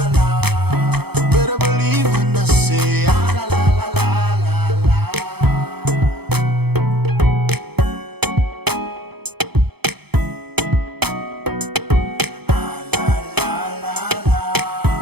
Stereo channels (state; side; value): late; left; 0.97 ms